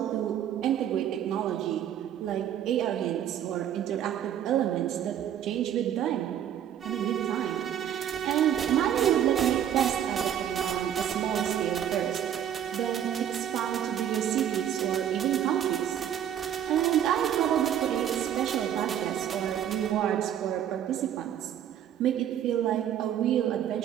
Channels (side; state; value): left; quieter; 10.1 dB